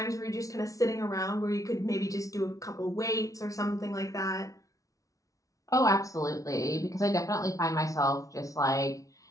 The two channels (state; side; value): late; right; 0.17 ms